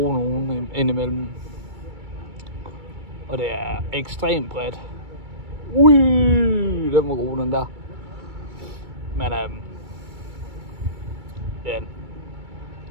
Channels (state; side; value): late; left; 2.3 ms